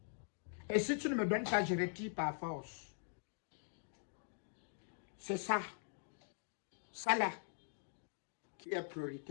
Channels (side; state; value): right; silent; digital silence